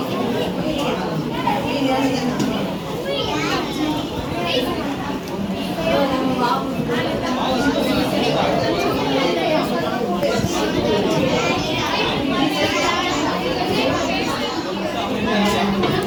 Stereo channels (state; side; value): identical; both; correlation 1.00